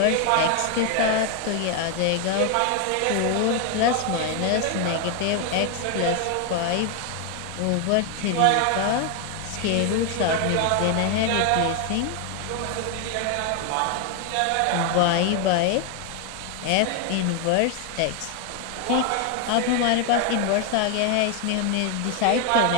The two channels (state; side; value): different; both; correlation 0.01